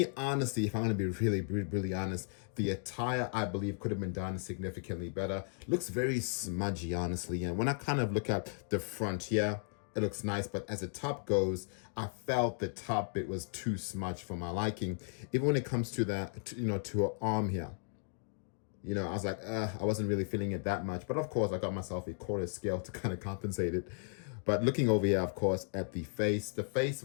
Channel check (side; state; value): right; silent; 54 dB below the other